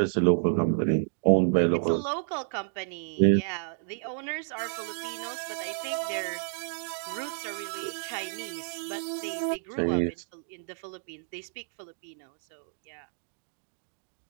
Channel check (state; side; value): silent; left; 58 dB below the other